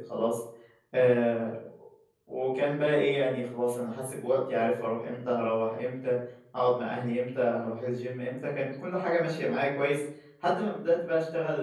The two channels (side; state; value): both; identical; correlation 1.00